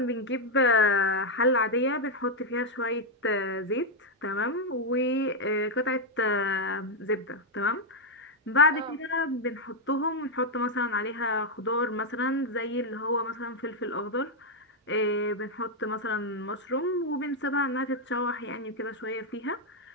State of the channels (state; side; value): normal; both; correlation 0.00